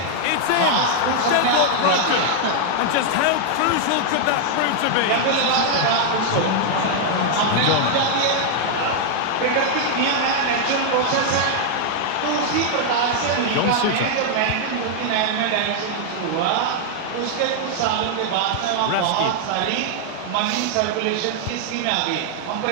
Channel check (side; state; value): both; different; correlation 0.00